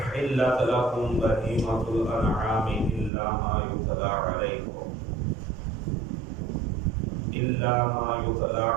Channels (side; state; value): left; drops out; at 3.1 s